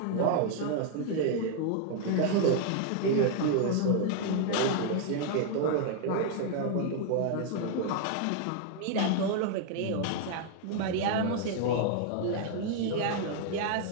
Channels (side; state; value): both; different; correlation 0.00